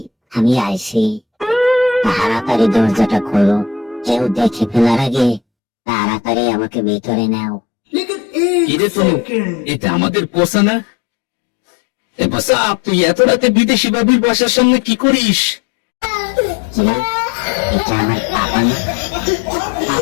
আমি আইছি, তাড়াতাড়ি দরজাটা খোলো, কেউ দেখে ফেলার আগে তাড়াতাড়ি আমাকে ভিতরে নাও। কিরে তনু, এটা আমাদের পোষা না? এ পোষা, তুই এত রাতে বিদেশি বাবির বাসার সামনে কি করিস? কি? এটা আমার পাপা না?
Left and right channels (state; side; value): drops out; right; at 5.4 s